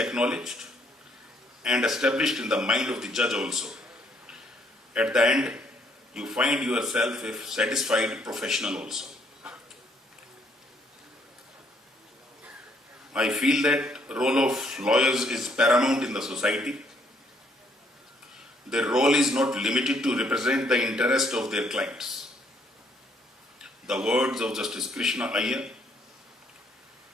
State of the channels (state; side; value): normal; both; correlation 0.68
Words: and established in the mind of the judge also. At the end, you find yourself a satisfied professional also. I feel that role of lawyers is paramount in the society. Their role is not limited to represent the interest of their clients. The words of Justice Krishna Iyer,